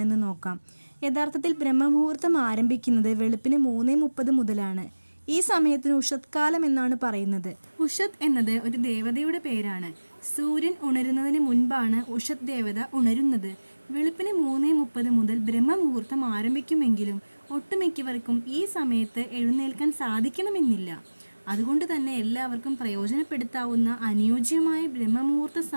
നോക്കാം. യഥാർത്ഥത്തിൽ ബ്രഹ്മമുഹൂർത്തം ആരംഭിക്കുന്നത് വെളുപ്പിന് 3:30 മുതലാണ്. ഈ സമയത്തിന് ഉഷത് കാലം എന്നാണ് പറയുന്നത്. ഉഷത് എന്നത് ഒരു ദേവതയുടെ പേരാണ്. സൂര്യൻ ഉണരുന്നതിന് മുൻപാണ് ഉഷത് ദേവത ഉണരുന്നത്. വെളുപ്പിന് 3:30 മുതൽ ബ്രഹ്മമുഹൂർത്തം ആരംഭിക്കുമെങ്കിലും ഒട്ടുമിക്കവർക്കും ഈ സമയത്ത് എഴുന്നേൽക്കാൻ സാധിക്കണമെന്നില്ല. അതുകൊണ്ട് തന്നെ എല്ലാവർക്കും പ്രയോജനപ്പെടുത്താവുന്ന അനുയോജ്യമായ ബ്രഹ്മമുഹൂർത്ത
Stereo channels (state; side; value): inverted; both; correlation -1.00